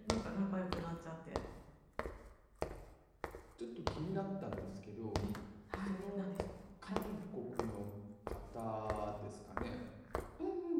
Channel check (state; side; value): identical; both; correlation 1.00